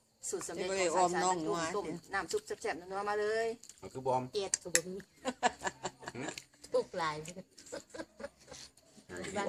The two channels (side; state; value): both; identical; correlation 1.00